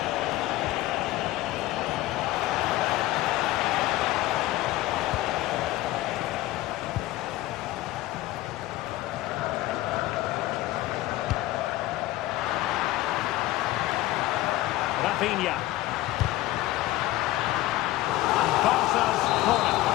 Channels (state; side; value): quieter; right; 16.7 dB